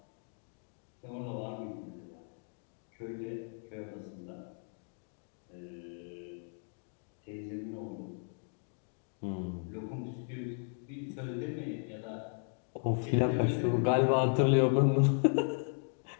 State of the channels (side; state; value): right; silent; 54 dB below the other